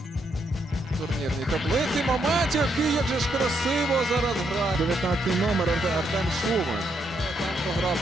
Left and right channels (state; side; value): normal; both; correlation 0.77